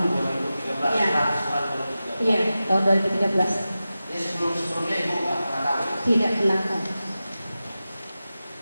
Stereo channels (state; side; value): inverted; both; correlation -0.94